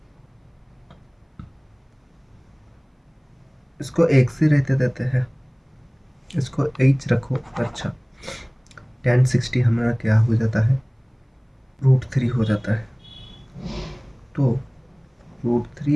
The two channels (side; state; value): both; identical; correlation 1.00